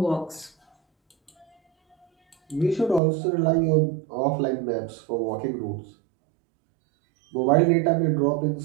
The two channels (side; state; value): left; drops out; at 3.0 s